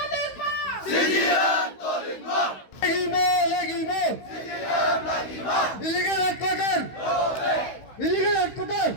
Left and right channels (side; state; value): right; late; 16 ms